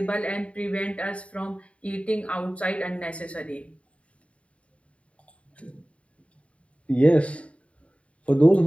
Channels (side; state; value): right; late; 0.063 ms